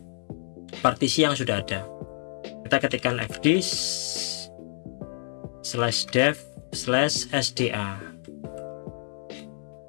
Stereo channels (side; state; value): right; silent; 59 dB below the other